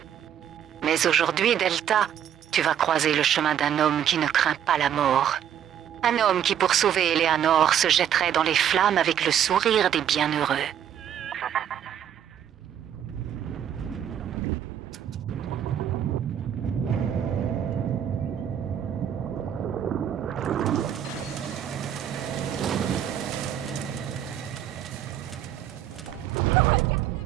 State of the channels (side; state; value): left; quieter; 9.7 dB